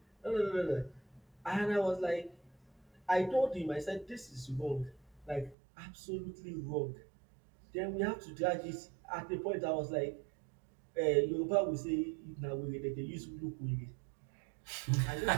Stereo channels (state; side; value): drops out; left; at 5.6 s